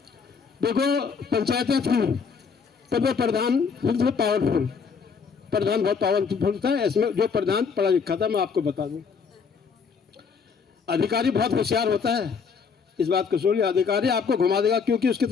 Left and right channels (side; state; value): right; quieter; 5.8 dB